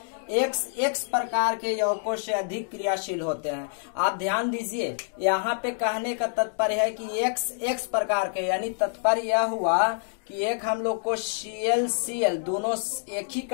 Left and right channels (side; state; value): right; silent; digital silence